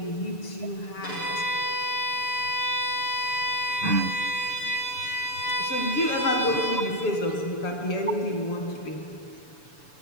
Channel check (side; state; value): right; late; 6.9 ms